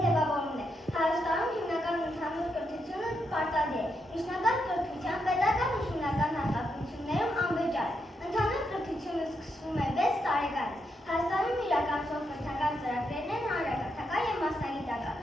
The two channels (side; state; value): both; normal; correlation 0.81